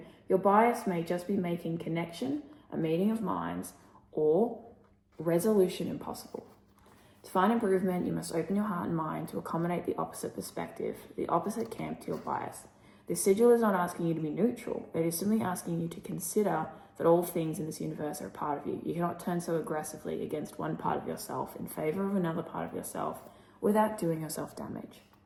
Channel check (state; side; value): identical; both; correlation 1.00